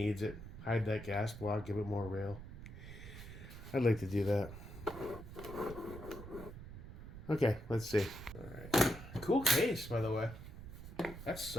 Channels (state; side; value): noise; right; rumble, 12 dB below the sound